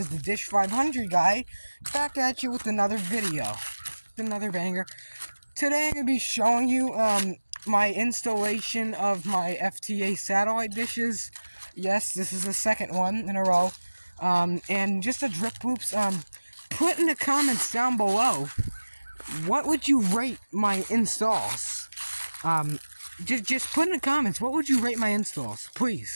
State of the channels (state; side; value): inverted; both; correlation -1.00